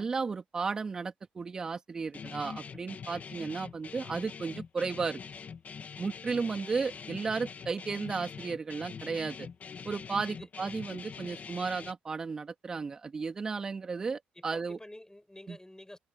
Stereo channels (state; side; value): quieter; left; 3.6 dB